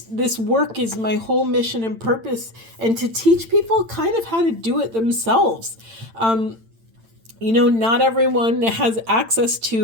work is my whole mission and purpose, and to teach people kind of how to do it themselves. Not everyone has access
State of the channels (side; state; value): left; late; 8.9 ms